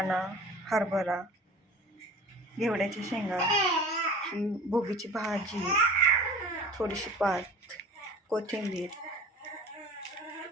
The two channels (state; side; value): normal; both; correlation 0.41